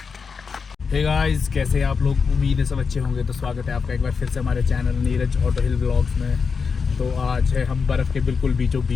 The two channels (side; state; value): right; quieter; 5.4 dB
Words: Hey guys, कैसे हैं आप लोग? उम्मीद है सब अच्छे होंगे। तो स्वागत है आपका एक बार फिर से हमारे चैनल नीरज ऑटो हिल व्लॉग्स में। तो आज है हम बर्फ़ के बिल्कुल बीचों